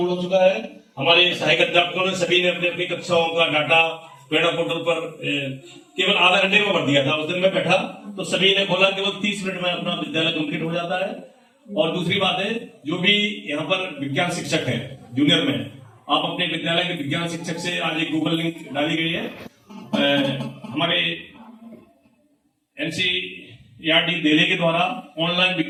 हो चुका है। हमारे सहायक अध्यापकों ने सभी ने अपनी अपनी कक्षाओं का डाटा प्रेरणा पोर्टल पर केवल आधा घंटे में भर दिया था। उस दिन मैं बैठा तो सभी ने खोला, केवल 30 मिनट में अपना विद्यालय कंप्लीट हो जाता है। और दूसरी बात है, जो भी यहाँ पर विज्ञान शिक्षक है जूनियर में, आप अपने विद्यालय के विज्ञान शिक्षक से, आज एक गूगल लिंक डाली गई है, हमारे एनसीईआरटी दिल्ली के द्वारा ऑनलाइन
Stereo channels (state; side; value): identical; both; correlation 1.00